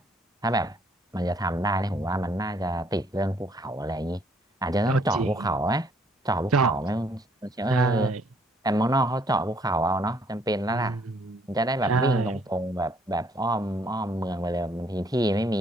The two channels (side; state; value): both; normal; correlation 0.65